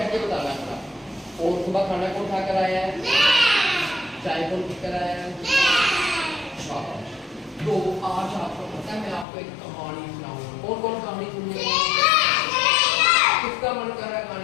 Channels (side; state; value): right; drops out; at 9.2 s